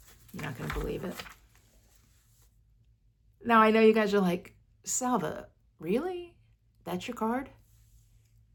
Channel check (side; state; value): both; identical; correlation 1.00